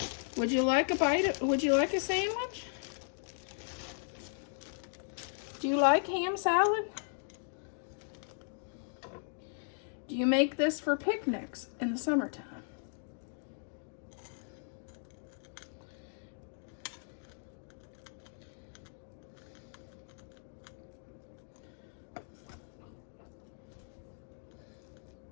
Would you like a bite? Would you like a sandwich? Do you like ham salad? Do you make this for picnics in the summertime?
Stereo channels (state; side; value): silent; right; digital silence